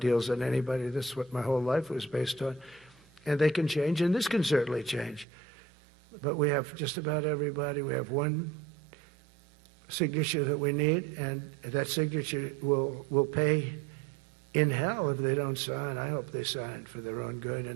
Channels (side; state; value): left; drops out; at 5.2 s